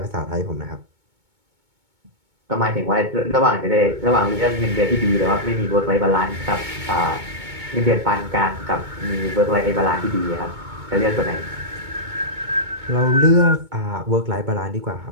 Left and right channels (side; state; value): left; late; 2.2 ms